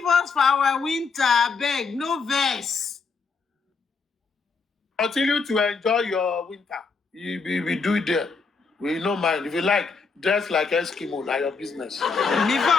us for our winter, beg, no verse. Continue to enjoy your winter. We do it there. We no mind. If you like, dress like Eskimo, like your business. Who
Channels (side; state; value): right; quieter; 4.8 dB